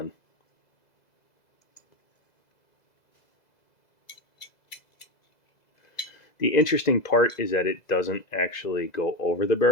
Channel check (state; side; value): late; right; 2.0 ms